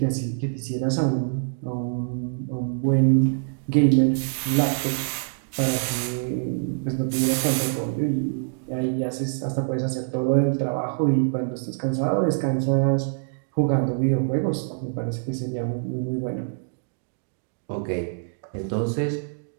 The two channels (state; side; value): silent; left; digital silence